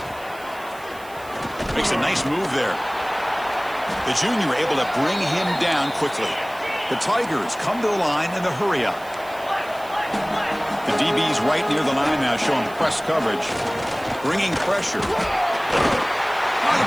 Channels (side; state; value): right; noise; hiss, 22 dB below the sound